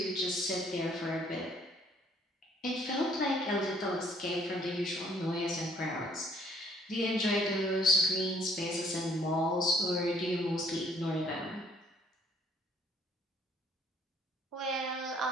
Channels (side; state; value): both; normal; correlation 0.62